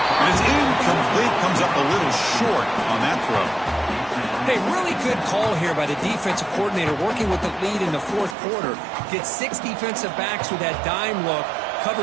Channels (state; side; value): drops out; left; at 8.3 s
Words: And it's incomplete. Comes up a little short on that throw. Hey, really good call here by the defensive coordinator working with the lead in the 4th quarter. Get 6 defensive backs with that dime look.